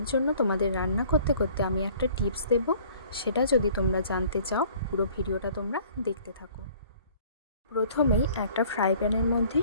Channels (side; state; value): both; inverted; correlation -0.54